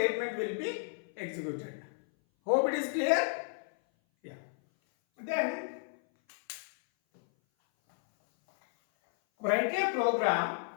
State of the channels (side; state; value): right; silent; 56 dB below the other